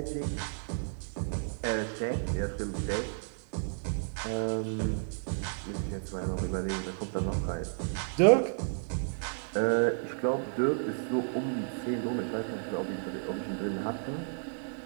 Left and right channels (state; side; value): silent; left; digital silence